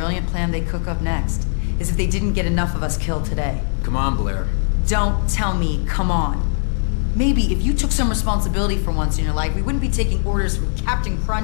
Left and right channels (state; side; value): silent; right; digital silence